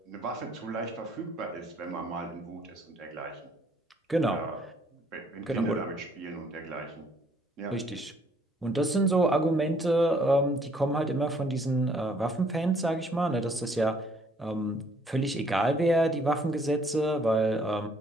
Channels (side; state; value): both; normal; correlation 0.64